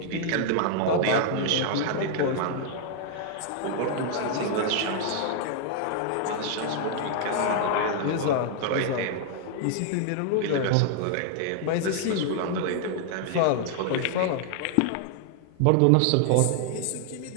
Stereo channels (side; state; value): both; different; correlation 0.00